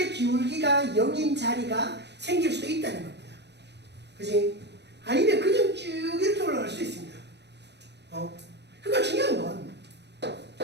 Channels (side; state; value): left; late; 0.50 ms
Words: 기울기가 0인 자리가 생길 수도 있다는 겁니다. 그지? 아니면 그냥 쭉 이렇게 올라갈 수 있습니다. 그러니까 중요한 건